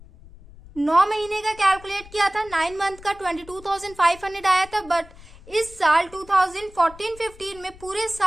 9 महीने का कैलकुलेट किया था, 9 मंथ का 22,500 आया था, बट इस साल 2014-15 में पूरे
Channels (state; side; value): noise; left; rumble, 21 dB below the sound